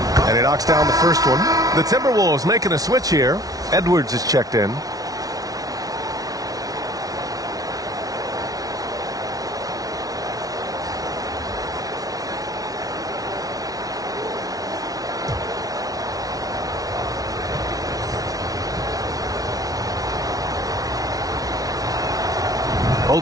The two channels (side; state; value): left; late; 0.18 ms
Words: And he knocks down the first one. The Timberwolves making a switch here. Edwards is checked in.